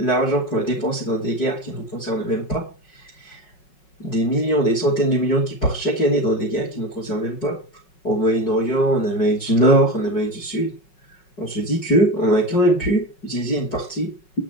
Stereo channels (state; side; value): late; right; 5.4 ms